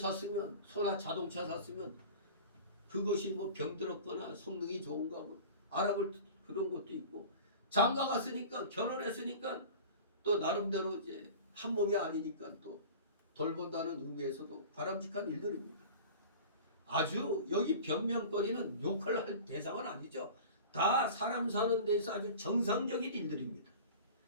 소나 자동차 샀으면 그것이 뭐 병들었거나 성능이 좋은가 뭐 알아볼 그런 것도 있고, 장가 갔으니까, 결혼했으니까 또 나름대로 이제 한 몸이 아니니까 또 돌본다는 의미에서도 바람직한 일들입니다. 아주 여기 변명거리는 욕을 할 대상은 아니죠. 다 사람 사는 데서 아주 정상적인 일들입니다.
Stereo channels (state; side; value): inverted; both; correlation -0.38